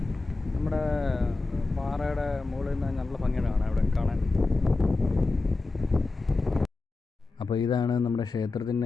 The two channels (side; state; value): right; quieter; 3.5 dB